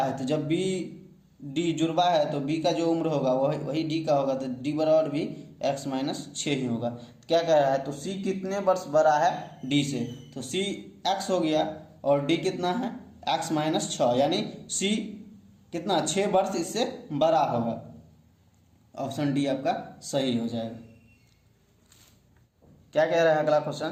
तो जब बी डी जुड़वा है तो बी का जो उम्र होगा वही डी का होगा, तो डी बराबर भी x -6 ही होगा। तो क्या कह रहा है तो सी कितने वर्ष बड़ा है डी से, तो सी x हो गया और डी कितना है x -6 यानी सी कितना 6 वर्ष इससे बड़ा होगा। ऑप्शन डी आपका सही हो जाएगा। क्या कह रहा है अगला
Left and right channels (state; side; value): identical; both; correlation 1.00